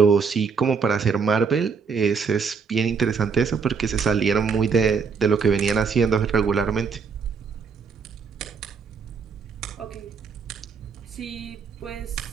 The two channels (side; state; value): left; quieter; 5.6 dB